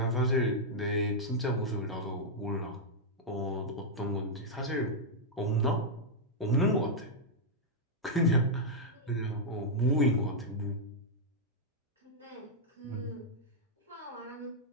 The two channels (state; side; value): normal; both; correlation -0.05